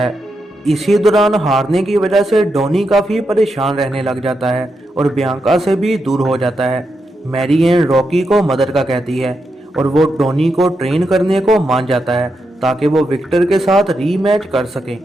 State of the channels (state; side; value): normal; both; correlation 0.85